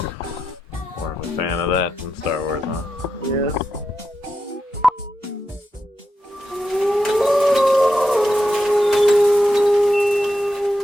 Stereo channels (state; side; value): normal; both; correlation 0.86